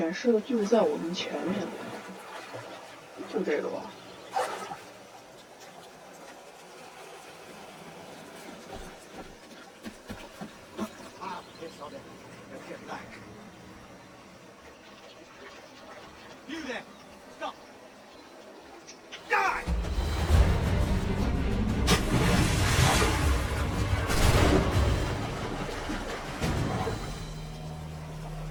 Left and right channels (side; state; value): both; identical; correlation 1.00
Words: 示的就在我们前面，就这个吧。You there! Stop! Die!